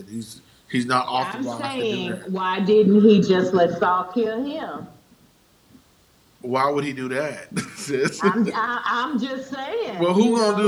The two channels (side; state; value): both; identical; correlation 1.00